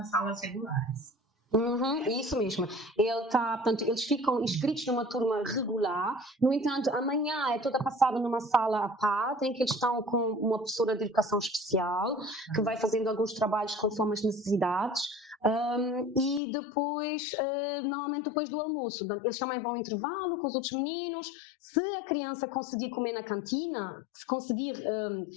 salas regulares. Isso mesmo. Portanto, eles ficam inscritos numa turma regular. No entanto, amanhã é toda passada numa sala à parte, em que eles estão com uma professora de educação especial, que vai fazendo alguns trabalhos conforme as necessidades. E depois, normalmente depois do almoço, eles também vão ao intervalo com os outros meninos. Se a criança conseguir comer na cantina, se conseguir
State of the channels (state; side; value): drops out; right; at 16.4 s